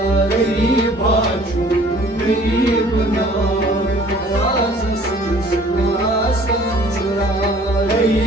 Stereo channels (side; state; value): both; normal; correlation 0.53